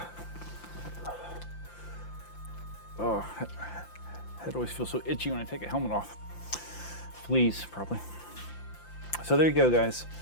Oh, head always feels so itchy when I take a helmet off. Fleas, probably. So there you go, guys.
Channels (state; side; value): late; right; 5.8 ms